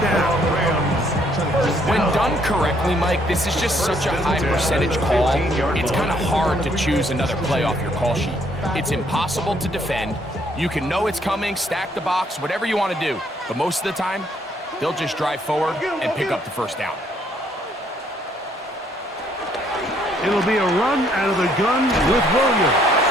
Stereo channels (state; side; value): normal; both; correlation 0.67